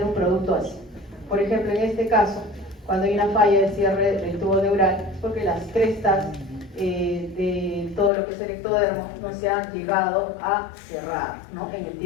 un producto así. Por ejemplo, en este caso, cuando hay una falla de cierre del tubo neural, es porque las crestas de todo lo que es el ectodermo no se han llegado a cerrar, ¿no? En el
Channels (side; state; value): right; drops out; at 8.1 s